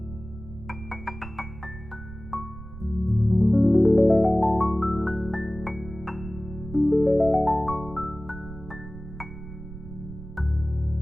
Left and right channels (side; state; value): right; noise; rumble, 14 dB below the sound